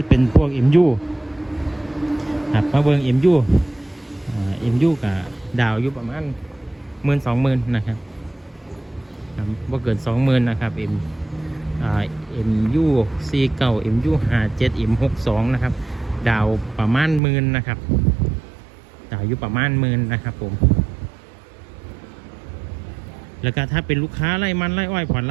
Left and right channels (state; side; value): drops out; left; at 17.2 s